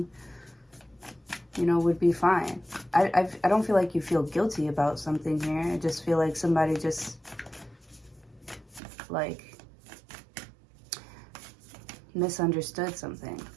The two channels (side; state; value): left; drops out; at 8.8 s